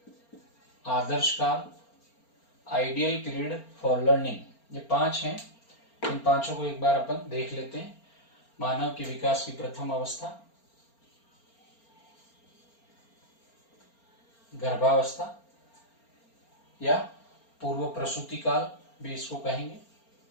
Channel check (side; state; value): right; late; 4.3 ms